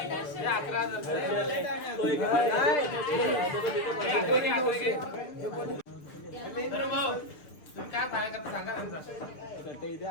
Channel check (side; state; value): right; late; 6.7 ms